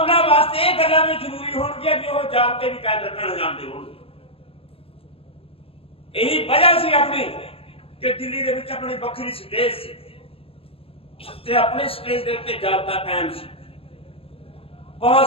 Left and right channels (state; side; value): late; right; 0.27 ms